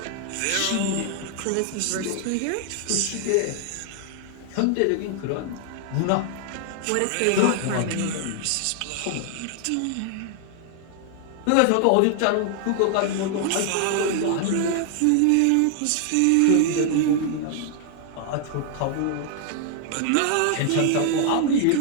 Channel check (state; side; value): different; both; correlation 0.00